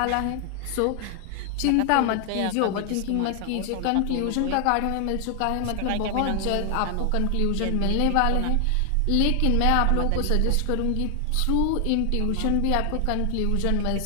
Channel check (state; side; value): different; both; correlation 0.00